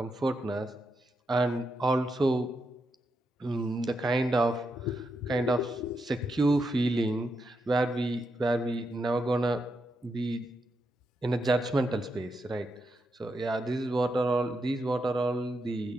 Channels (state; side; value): normal; both; correlation 0.83